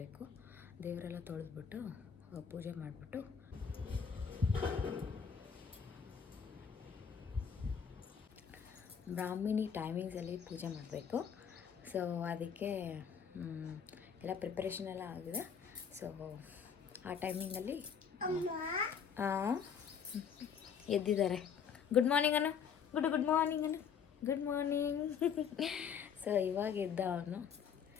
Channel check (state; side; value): quieter; right; 7.2 dB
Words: ದೇವರೆಲ್ಲ ತೊಳೆದ್ಬಿಟ್ಟು ಪೂಜೆ ಮಾಡಿಬಿಟ್ಟು ಬ್ರಾಹ್ಮಿಣಿ ಟೈಮಿಂಗ್ಸಲ್ಲಿ ಪೂಜೆ ಮಾಡಬೇಕು. ಸೊ ಅದಕ್ಕೆ ಎಲ್ಲ ಪ್ರಿಪ್ರೇಷನ್ ಎಲ್ಲ ಆಗಿದೆ. ಸೊ ಆ ಟೈಮಿಂಗಲ್ಲಿ ಎದ್ದಿದ್ದಾರೆ. ಗುಡ್ ಮಾರ್ನಿಂಗ್ ಅನ್ನು, ಗುಡ್ ಮಾರ್ನಿಂಗ್ ಅನ್ನು, ಗುಡ್ ಮಾರ್ನಿಂಗ್. ಸೊ ಇವಾಗ ಎದ್ದ ಅವನು.